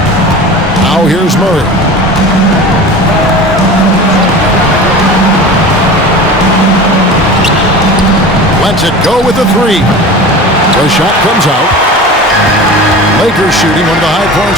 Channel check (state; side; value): normal; both; correlation 0.35